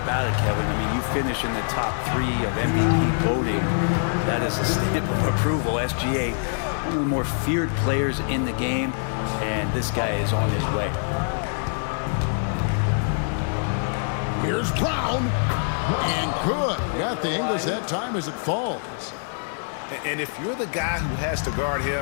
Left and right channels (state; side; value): silent; right; digital silence